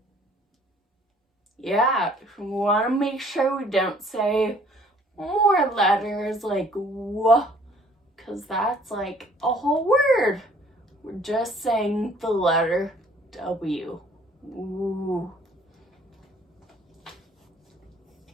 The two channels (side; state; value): both; normal; correlation 0.58